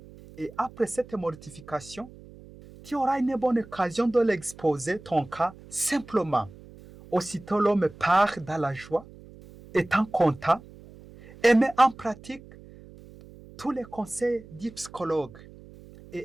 Et après cette mortification, tu auras une bonne occasion de l'exposer ton cas simplement. Aussitôt l'homme part dans la joie, étant content, et met en pratique tous les conseils du psychologue.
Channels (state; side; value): noise; right; hum, 20 dB below the sound